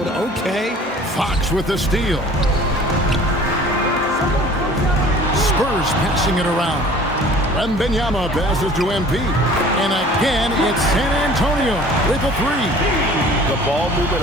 Okay. Fox with the steal. Spurs passing it around. Wembanyama passes to MP. And again, it's San Antonio with a 3. The ball movement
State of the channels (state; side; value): normal; both; correlation 0.48